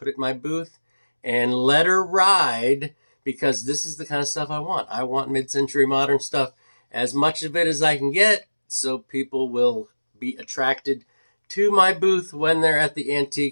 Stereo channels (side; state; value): both; inverted; correlation -1.00